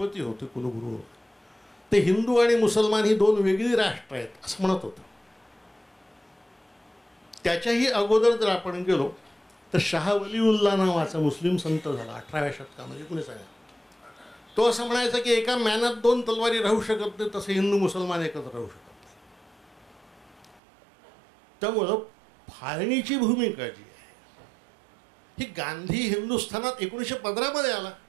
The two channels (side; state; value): left; drops out; at 20.6 s